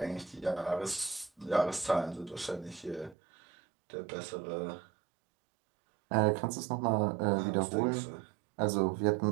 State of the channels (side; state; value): left; drops out; at 3.2 s